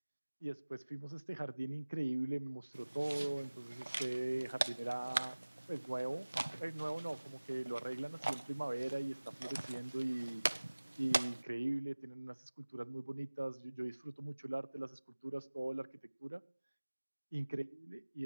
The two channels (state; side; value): inverted; both; correlation -1.00